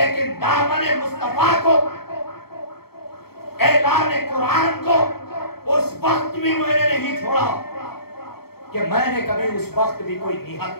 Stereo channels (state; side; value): late; right; 0.95 ms